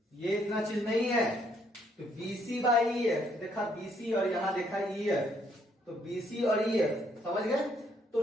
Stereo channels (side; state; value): both; normal; correlation 0.69